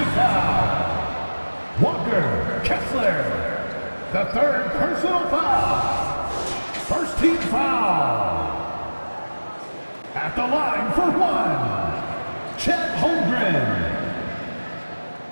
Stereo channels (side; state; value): both; inverted; correlation -1.00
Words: foul. Walker Kessler. The 3rd personal foul. First team foul. At the line for 1. Chet Holmgren.